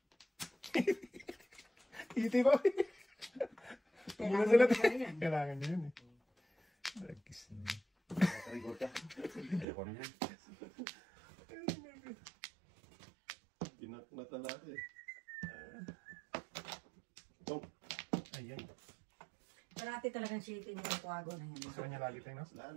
Iti ba? Kailangan Sila ko na yan. kailangan niya yun eh. Dagis na yun. Record ka. Ayoko na yan. Pinaknatan natin eh. Dong. Ayan. Parati talagang shitty niya yung kuwago na yan. Gusto niya lagi tayo na? Wala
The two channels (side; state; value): left; drops out; at 9.7 s